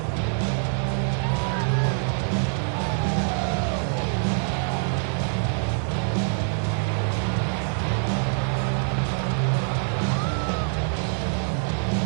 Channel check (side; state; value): left; silent; 56 dB below the other